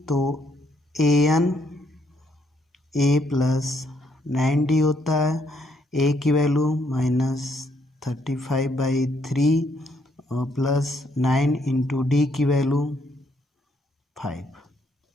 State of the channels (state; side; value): normal; both; correlation 0.72